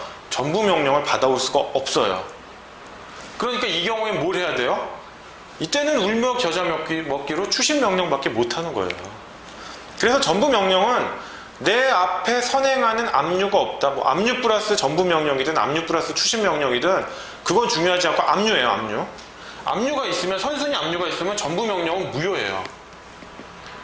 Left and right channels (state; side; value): identical; both; correlation 1.00